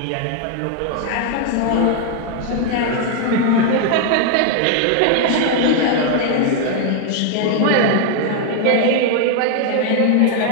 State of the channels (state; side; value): different; both; correlation 0.00